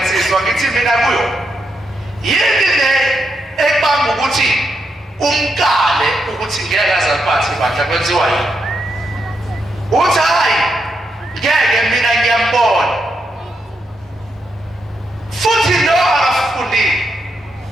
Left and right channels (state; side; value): normal; both; correlation 0.81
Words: ngithi mina kuyo yini le ekubanga ukuthi umkale ukuthi ngeke azaliphathe ibandla kwenziwa yini uthi hayi ngeke mina ngiyambona futhi lo akafundile